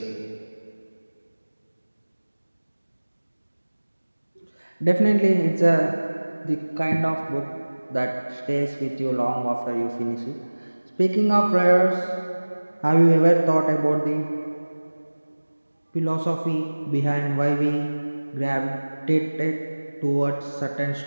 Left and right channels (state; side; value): inverted; both; correlation -1.00